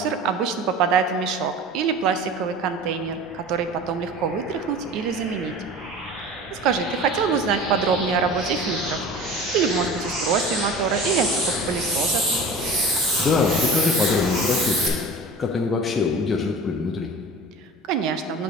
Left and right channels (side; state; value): both; normal; correlation 0.37